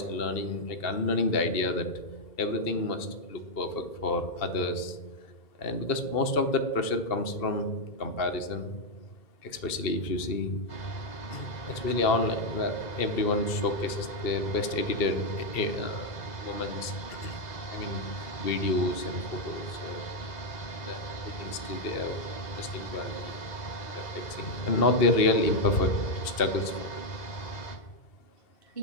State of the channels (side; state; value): right; late; 2.7 ms